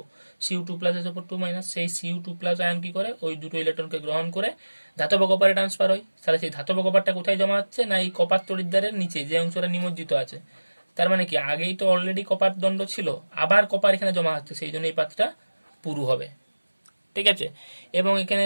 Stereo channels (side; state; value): both; inverted; correlation -1.00